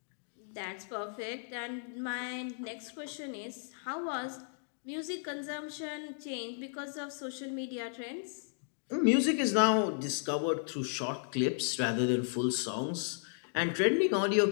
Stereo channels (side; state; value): right; silent; digital silence